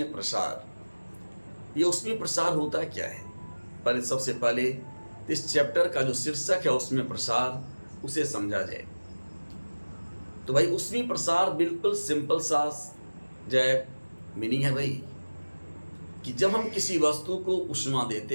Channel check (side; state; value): both; inverted; correlation -1.00